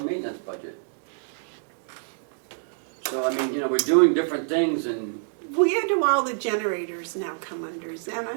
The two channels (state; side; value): silent; left; digital silence